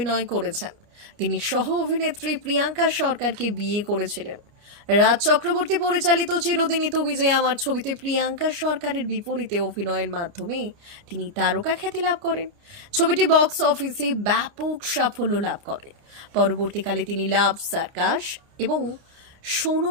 করেছেন। তিনি সহ অভিনেত্রী প্রিয়াঙ্কা সরকারকে বিয়ে করেছিলেন। রাজ চক্রবর্তী পরিচালিত চিরদিনই তুমি যে আমার ছবিতে প্রিয়াঙ্কা সরকারের বিপরীতে অভিনয়ের মাধ্যমে তিনি তারকা খ্যাতি লাভ করেন। ছবিটি বক্স অফিসে ব্যাপক সাফল্য লাভ করে। পরবর্তীকালে তিনি লাভ সার্কাস এবং শোনো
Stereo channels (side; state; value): left; late; 29 ms